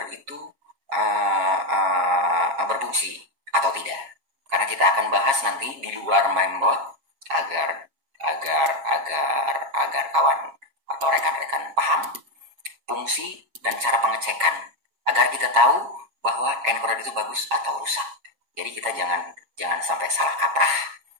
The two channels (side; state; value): left; late; 7.3 ms